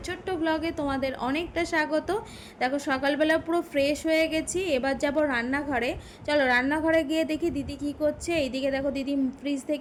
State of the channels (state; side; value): identical; both; correlation 1.00